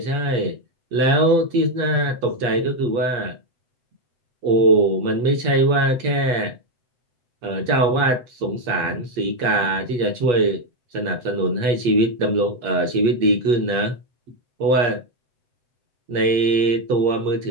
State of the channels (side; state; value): left; late; 8.4 ms